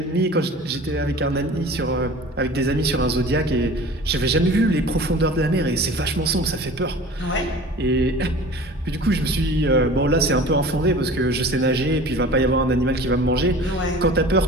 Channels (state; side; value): normal; both; correlation 0.41